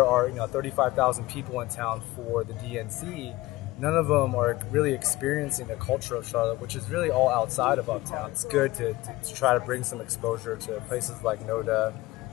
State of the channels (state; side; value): quieter; right; 19.2 dB